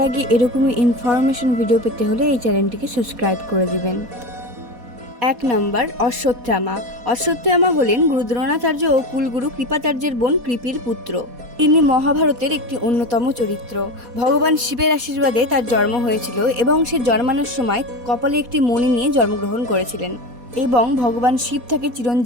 আগে এরকমই ইনফরমেশন ভিডিও পেতে হলে এই চ্যানেলটিকে সাবস্ক্রাইব করে দেবেন। 1 নম্বর অশ্বত্থামা। অশ্বত্থামা হলেন গুরু দ্রোণাচার্য ও কুলগুরু কৃপাচার্যের বোন কৃপির পুত্র। তিনি মহাভারতের একটি অন্যতম চরিত্র। ভগবান শিবের আশীর্বাদে তার জন্ম হয়েছিল এবং সে জন্মানোর সময় কপালে একটি মণি নিয়ে জন্মগ্রহণ করেছিলেন এবং ভগবান শিব তাকে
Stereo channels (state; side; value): late; left; 4.2 ms